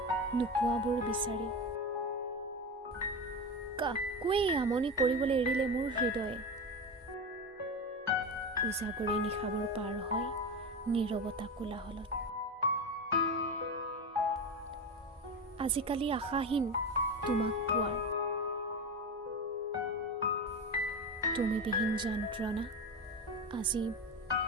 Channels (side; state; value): both; normal; correlation 0.21